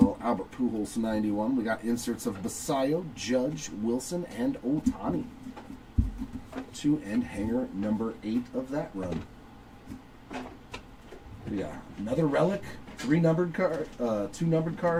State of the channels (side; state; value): both; identical; correlation 1.00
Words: Albert Pujols 91. We got inserts of Basayo, Judge, Wilson, and Ohtani. 2 and hanger number 8 of that run. We got another relic, 3 numbered card, 2 numbered